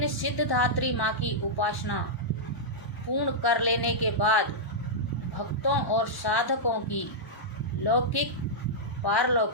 सिद्धधात्री माँ की उपासना पूर्ण कर लेने के बाद भक्तों और साधकों की लौकिक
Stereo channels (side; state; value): right; late; 1.1 ms